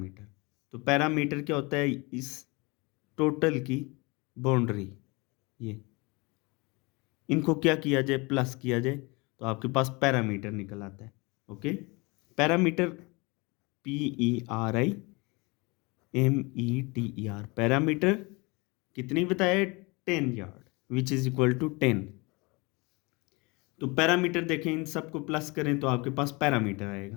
तो पैरामीटर क्या होता है, इस टोटल की बाउंड्री, ये इनको क्या किया जाए, प्लस किया जाए, तो आपके पास पैरामीटर निकल आता है। ओके, पैरामीटर PERIMETER, पैरामीटर कितनी बताया, 10 yard, which is equal to 10। तो पैरामीटर देखें, इन सबको प्लस करें तो आपके पास पैरामीटर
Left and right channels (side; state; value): right; quieter; 26.8 dB